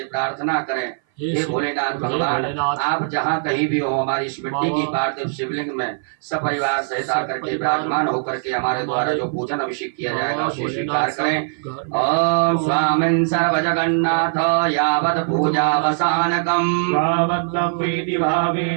प्रार्थना करें हे भोलेनाथ भगवान आप जहाँ कहीं भी हो हमारी इस मिट्टी की पार्थिव शिवलिंग में सपरिवार सहित आकर के विराजमान होकर के हमारे द्वारा जो पूजन अभिषेक किया जाएगा उसे स्वीकार करें ओम स्वामिन् सर्व जगन्नाथ यावत् पूजावसानकम्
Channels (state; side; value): silent; left; 58 dB below the other